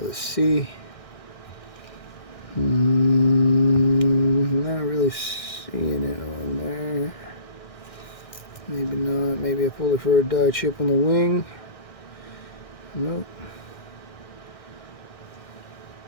see. Not really seeing it on there. Maybe not. Maybe I pulled it for a die chip on the wing. Nope.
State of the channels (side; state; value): right; late; 1.6 ms